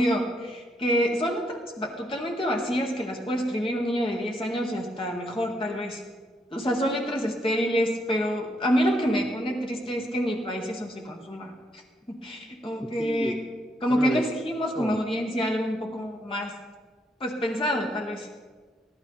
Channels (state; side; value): normal; both; correlation 0.76